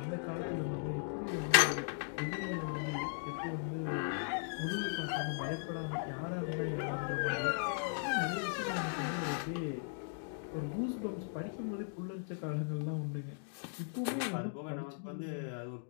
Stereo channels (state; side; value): silent; right; digital silence